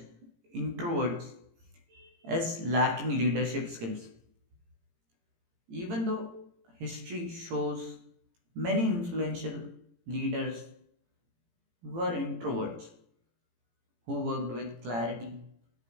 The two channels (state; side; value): late; left; 18 ms